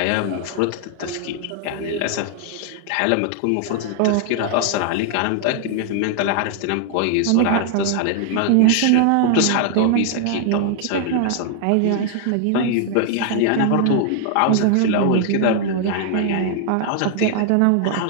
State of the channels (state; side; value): different; both; correlation 0.00